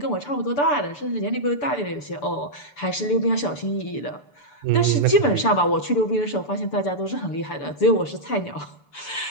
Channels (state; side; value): late; right; 6.9 ms